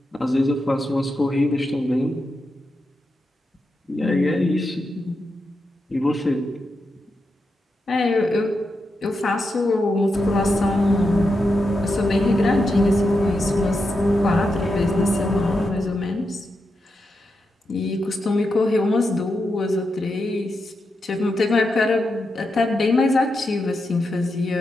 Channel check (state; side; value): normal; both; correlation 0.86